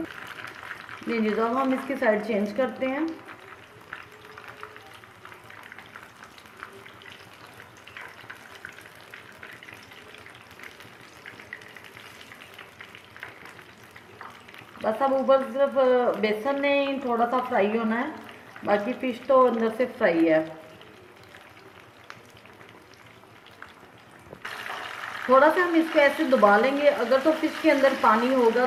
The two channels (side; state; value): both; identical; correlation 1.00